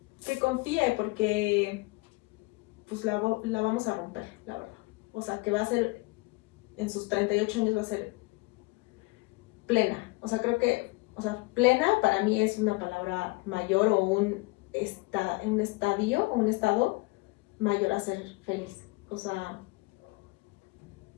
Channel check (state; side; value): quieter; right; 24.5 dB